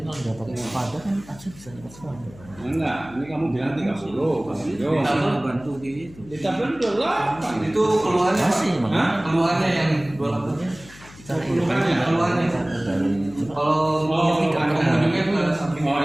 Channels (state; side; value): noise; left; hum, 21 dB below the sound